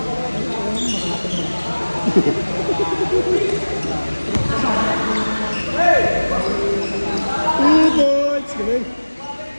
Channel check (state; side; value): inverted; both; correlation -1.00